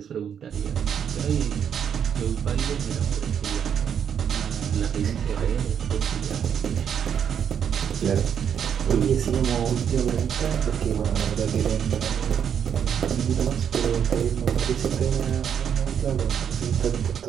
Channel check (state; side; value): quieter; left; 8.2 dB